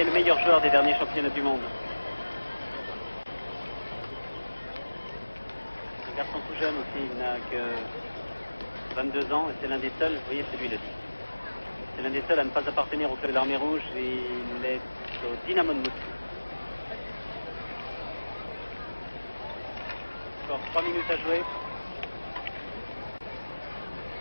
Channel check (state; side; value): inverted; both; correlation -1.00